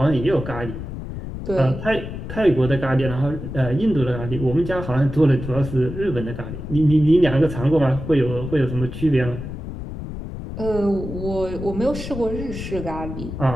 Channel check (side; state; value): left; noise; rumble, 8 dB below the sound